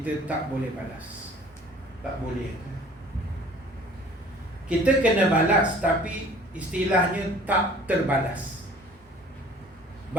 tak boleh balas. Tak boleh. Kita kena balas, tapi istilahnya tak terbalas.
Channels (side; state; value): both; normal; correlation 0.50